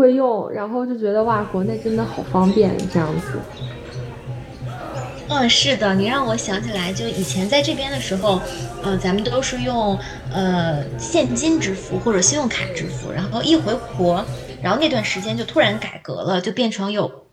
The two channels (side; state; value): both; identical; correlation 1.00